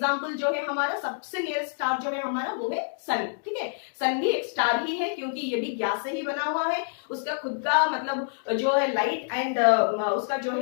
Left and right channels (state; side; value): silent; right; digital silence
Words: जो है हमारा सबसे नियरेस्ट स्टार जो है हमारा वो है सन, ठीक है। सन भी एक स्टार ही है क्योंकि ये भी गैस से ही बना हुआ है, उसका खुद का मतलब जो है लाइट एंड उसका जो